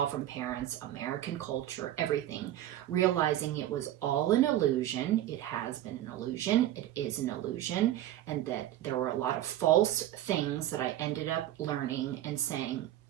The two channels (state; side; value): quieter; left; 13.2 dB